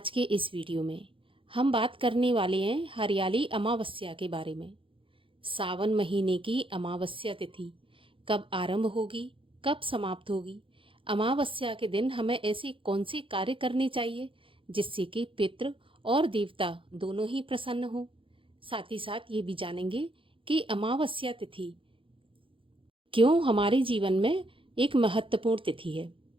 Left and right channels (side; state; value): left; late; 0.25 ms